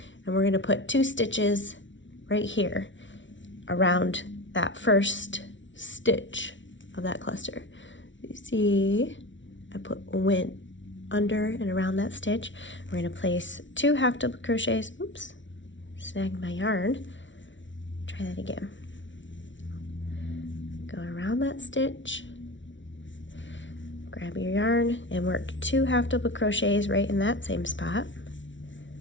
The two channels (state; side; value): late; right; 0.55 ms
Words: and we're going to put 2 stitches right here around that first stitch of that cluster. You see, I went under and around that stitch. We're going to place 2 half double crochets. Oops, snagged my yarn. Try that again. Go around that stitch, grab your yarn and work 2 half double crochets right in that same spot.